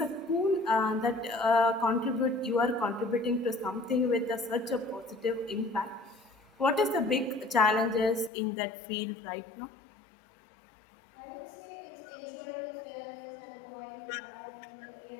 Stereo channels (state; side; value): drops out; right; at 8.3 s